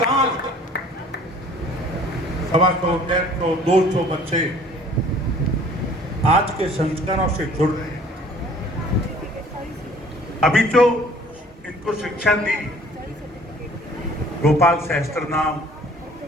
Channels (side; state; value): both; normal; correlation 0.53